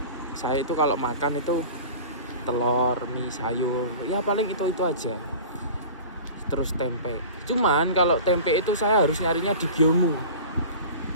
saya itu kalau makan itu telur, mie, sayur, ya paling itu aja. Terus tempe. Cuman kalau tempe itu saya harus nyarinya di Gyomu.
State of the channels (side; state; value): both; inverted; correlation -0.39